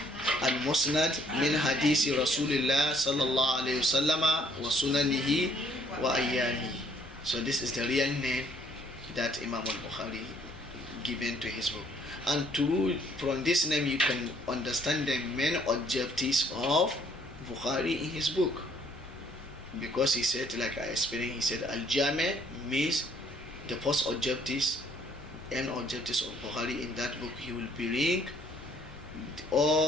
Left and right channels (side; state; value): both; normal; correlation 0.63